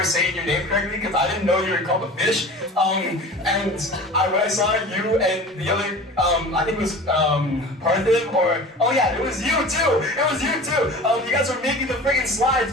saying your name correctly because I didn't know you were called a fish. And when I saw you and the other, I think it was Parthiv or, oh yeah, it was you too. It was you too. You guys were making the freaking slides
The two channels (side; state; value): both; normal; correlation 0.38